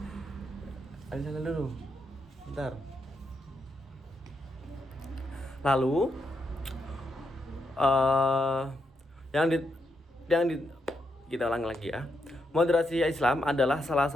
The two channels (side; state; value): both; normal; correlation 0.81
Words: Ayo dulu, bentar. Lalu kita ulang lagi ya. Moderasi Islam adalah salah